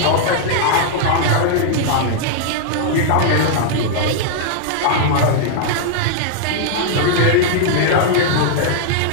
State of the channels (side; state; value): both; different; correlation -0.01